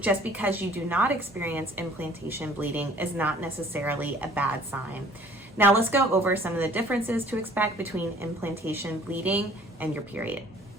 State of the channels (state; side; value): normal; both; correlation 0.54